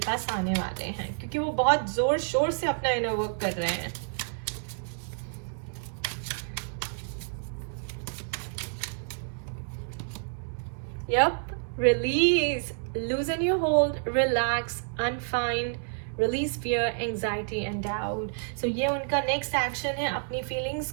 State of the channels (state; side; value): silent; left; digital silence